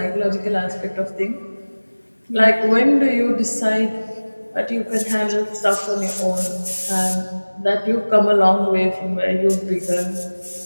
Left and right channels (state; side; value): inverted; both; correlation -1.00